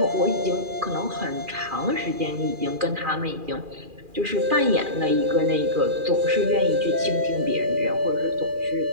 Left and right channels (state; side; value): late; left; 2.4 ms